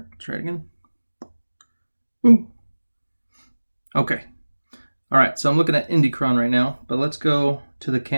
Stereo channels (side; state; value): both; inverted; correlation -1.00